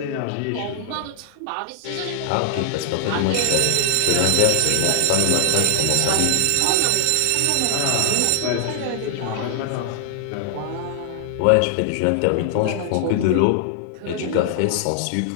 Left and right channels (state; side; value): different; both; correlation 0.00